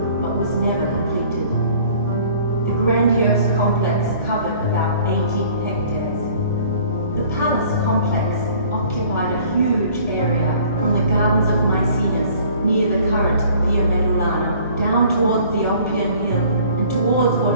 but was never completed. The grandiose complex covered about 18 hectares. The palace complex occupied a huge area from the gardens of Maecenas near the current Via Medulana down towards the Oppian Hill and towards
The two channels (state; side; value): inverted; both; correlation -0.52